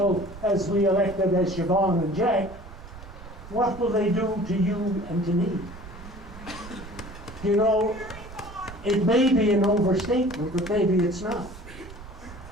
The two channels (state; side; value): noise; right; rumble, 15 dB below the sound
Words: as we elected as Siobhan and Jack, what will they do to you and to me? It may be an overstatement, but maybe it's not.